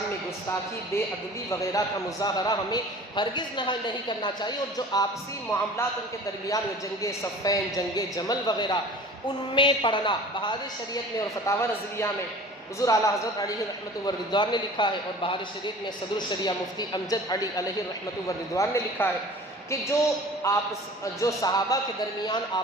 میں گستاخی، بے ادبی وغیرہ کا مظاہرہ ہمیں ہرگز نہیں کرنا چاہیے، اور جو آپسی معاملات ان کے درمیان میں جنگ صفین، جنگ جمل وغیرہ، ان میں پڑھنا، بہار شریعت میں اور فتاوی رضویہ میں حضور اعلیٰ حضرت علیہ رحمۃ و رضوان نے لکھا ہے، اور بہار شریعت میں صدر الشریعہ مفتی امجد علی علیہ رحمۃ و رضوان نے لکھا ہے کہ جو صحابہ کے درمیان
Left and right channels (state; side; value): normal; both; correlation 0.43